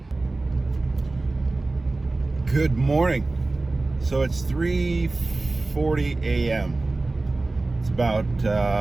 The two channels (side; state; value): left; quieter; 3.2 dB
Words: Good morning. So it's 3:40 a.m. It's about